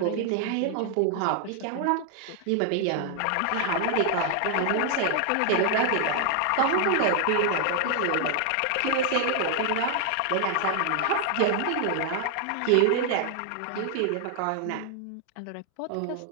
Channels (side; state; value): both; different; correlation 0.00